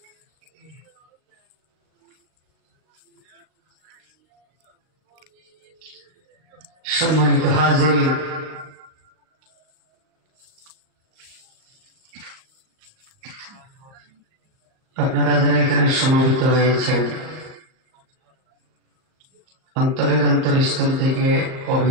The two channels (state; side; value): late; left; 38 ms